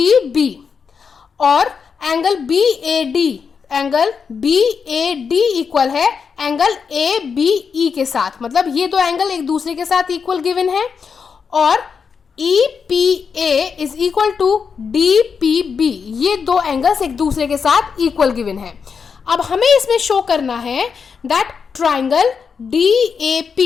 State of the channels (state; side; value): quieter; right; 6.0 dB